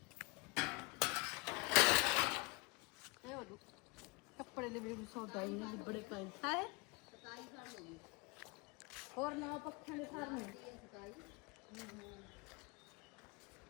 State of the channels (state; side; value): quieter; right; 27.6 dB